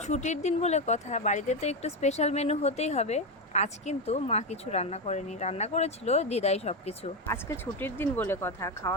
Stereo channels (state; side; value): normal; both; correlation 0.11